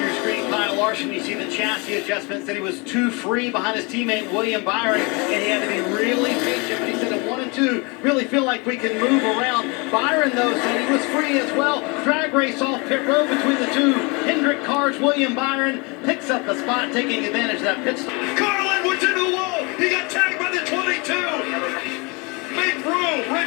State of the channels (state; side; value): quieter; right; 29.2 dB